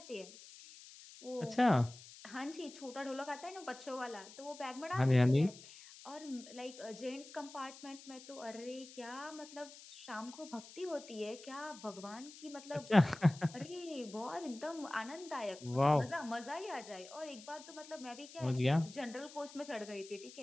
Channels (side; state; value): left; noise; hiss, 17 dB below the sound